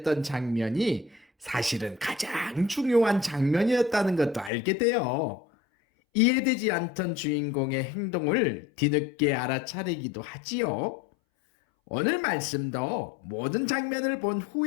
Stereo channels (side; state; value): right; drops out; at 4.5 s